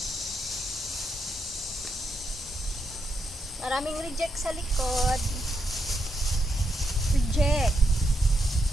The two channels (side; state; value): both; normal; correlation 0.81